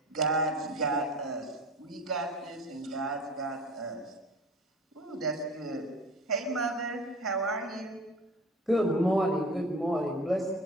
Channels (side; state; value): both; normal; correlation 0.39